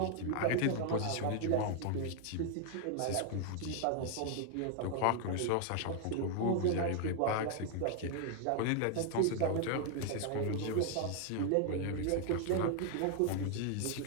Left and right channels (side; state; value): both; different; correlation 0.00